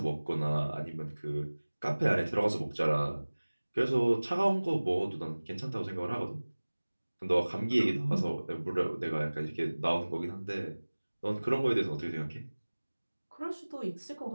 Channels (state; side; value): inverted; both; correlation -1.00